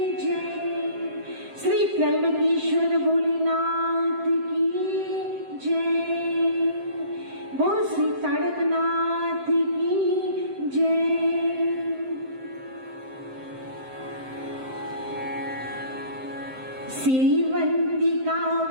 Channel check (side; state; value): left; late; 7.7 ms